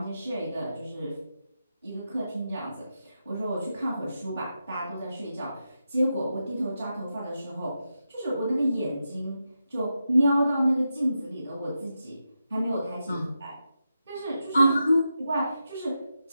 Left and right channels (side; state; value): both; inverted; correlation -0.88